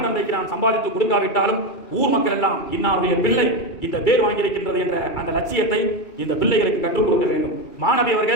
தந்தைக்கு நான் சம்பாதித்து கொடுக்காவிட்டாலும் ஊர் மக்கள் எல்லாம் இன்னாருடைய பிள்ளை இந்த பேர் வாங்கியிருக்கின்றது என்ற அந்த லட்சியத்தை இந்த பிள்ளைகளுக்கு கற்றுக் கொடுக்க வேண்டும். மாணவி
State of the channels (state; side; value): late; right; 2.3 ms